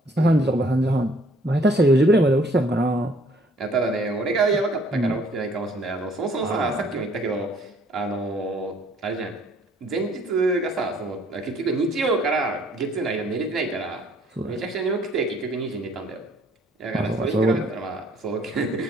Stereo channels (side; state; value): both; normal; correlation 0.61